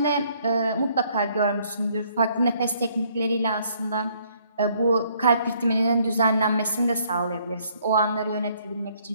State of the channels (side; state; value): both; inverted; correlation -0.66